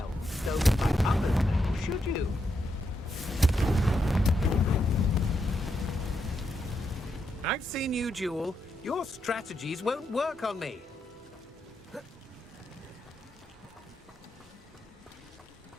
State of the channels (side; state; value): both; normal; correlation 0.82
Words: stolen by others now, should you? I've seen you, Jewel. Your strategies won't work on me.